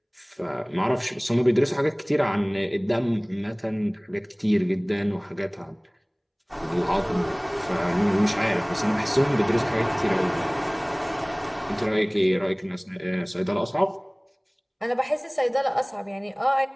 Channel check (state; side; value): identical; both; correlation 1.00